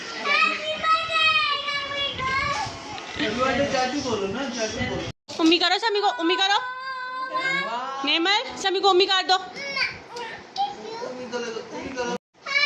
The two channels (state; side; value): identical; both; correlation 1.00